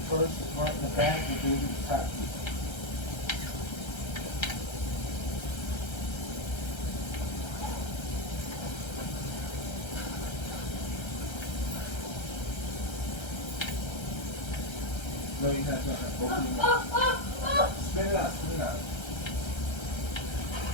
first, the front and the back, and then do the top teeth. No, you have not. Open your mouth. Spit it out, spit it out.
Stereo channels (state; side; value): late; right; 1.3 ms